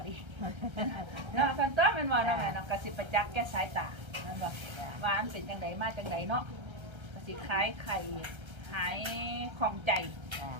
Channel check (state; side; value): late; left; 1.3 ms